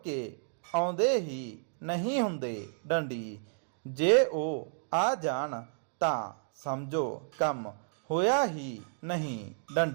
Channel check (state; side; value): silent; left; digital silence